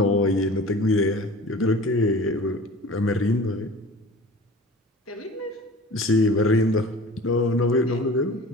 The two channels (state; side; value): normal; both; correlation 0.41